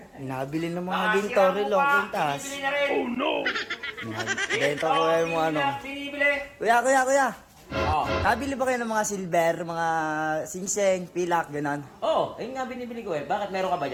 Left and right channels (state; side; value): identical; both; correlation 1.00